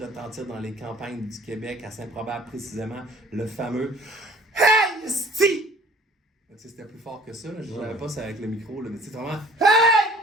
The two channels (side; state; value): both; normal; correlation 0.53